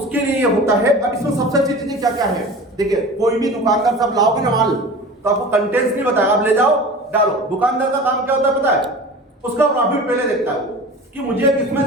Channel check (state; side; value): normal; both; correlation 0.36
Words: लिए ये होता है। अब इसमें सबसे अच्छी चीजें क्या क्या है, देखिए, कोई भी दुकानदार साहब लाओगे ना माल, तो आपको कंटेंट्स नहीं बताया, आप ले जाओ डालो। दुकानदार का काम क्या होता है पता है, उसका प्रॉफिट पहले देखता है कि मुझे किसमें